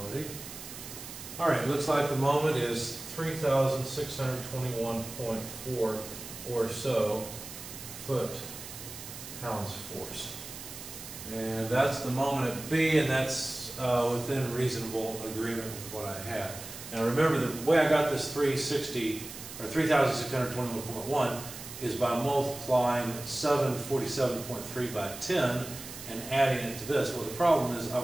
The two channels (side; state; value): right; noise; hiss, 12 dB below the sound